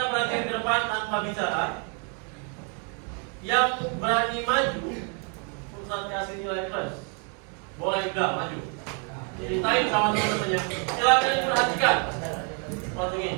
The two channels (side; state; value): left; quieter; 38.8 dB